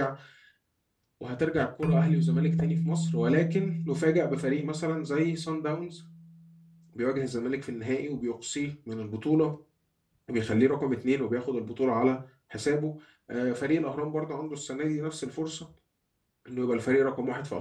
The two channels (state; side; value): identical; both; correlation 1.00